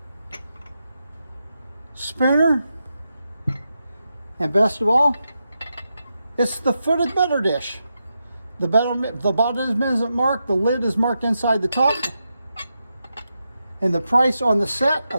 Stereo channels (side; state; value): both; inverted; correlation -0.87